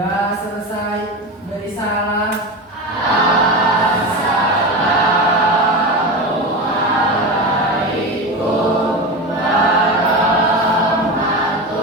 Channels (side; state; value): both; normal; correlation 0.23